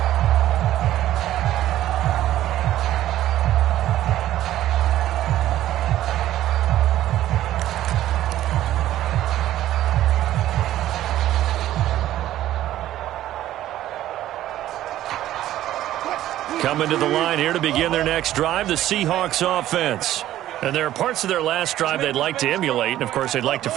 Coming to the line here to begin their next drive, the Seahawks offense. And there are parts of their last drive they'd like to emulate. And, of course, they'd like to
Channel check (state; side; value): quieter; left; 13.4 dB